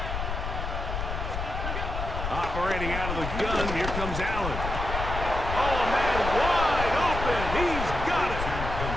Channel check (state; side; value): noise; left; rumble, 4 dB below the sound